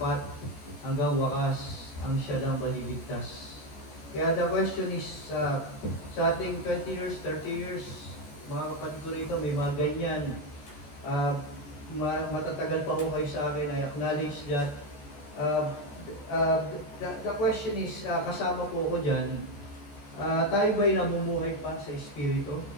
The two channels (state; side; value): late; right; 14 ms